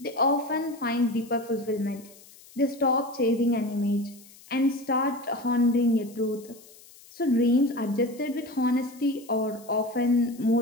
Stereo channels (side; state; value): left; noise; hiss, 23 dB below the sound